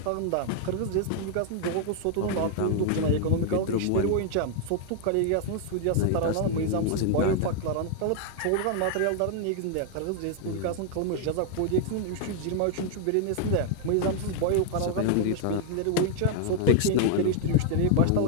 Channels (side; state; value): both; different; correlation 0.00